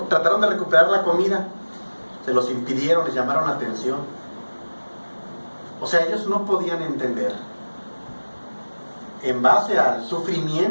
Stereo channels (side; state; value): both; inverted; correlation -1.00